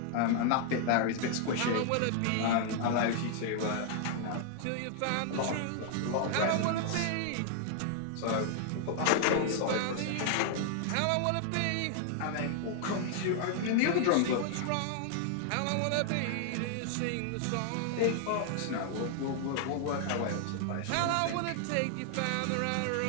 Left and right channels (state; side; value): different; both; correlation 0.00